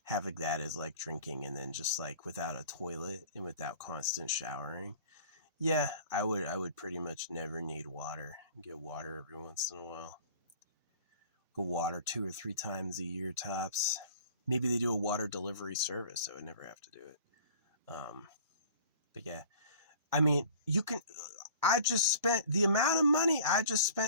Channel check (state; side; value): inverted; both; correlation -0.46